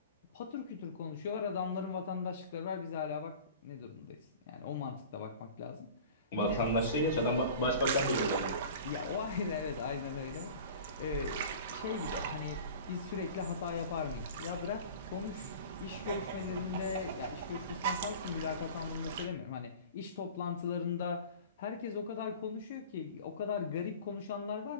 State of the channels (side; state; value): both; inverted; correlation -0.39